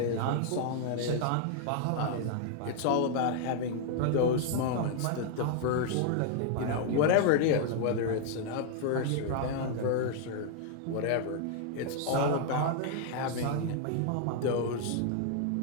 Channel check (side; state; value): both; different; correlation 0.00